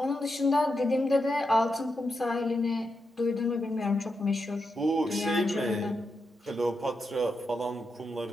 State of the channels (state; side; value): normal; both; correlation 0.86